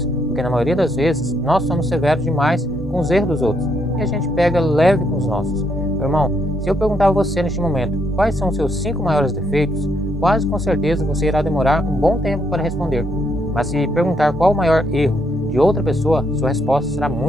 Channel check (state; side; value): normal; both; correlation 0.74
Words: porque na maioria das vezes nós somos severos demais com os erros dos outros e a gente pega leve com os nossos. Meu irmão, se eu perguntar a você neste momento quais são os seus 5 maiores defeitos, quase com certeza você irá demorar um bom tempo para responder. Mas se perguntar qual o maior erro de outra pessoa, sua resposta será